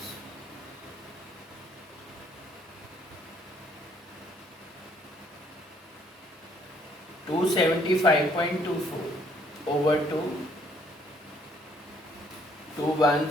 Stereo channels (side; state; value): both; normal; correlation 0.65